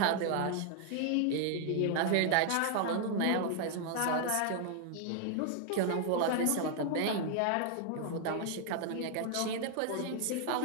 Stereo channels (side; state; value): both; different; correlation 0.00